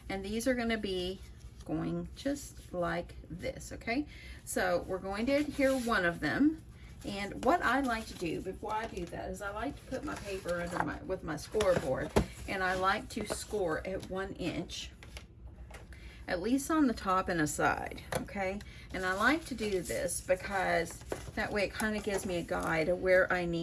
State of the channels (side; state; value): both; identical; correlation 1.00